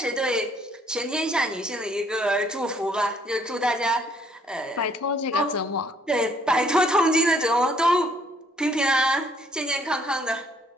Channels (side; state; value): both; normal; correlation 0.64